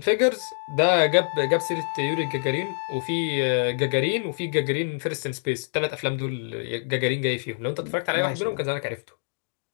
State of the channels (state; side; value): silent; right; digital silence